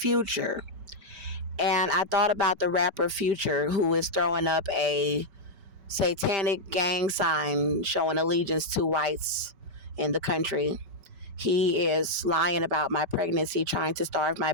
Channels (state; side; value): late; left; 5.1 ms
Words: And I thought about the rapper Future, who is throwing up a satanic gang sign showing allegiance to whites in the country. He is lying about my pregnancy, trying to starve my